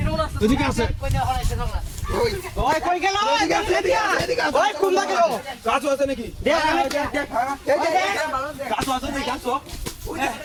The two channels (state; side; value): identical; both; correlation 1.00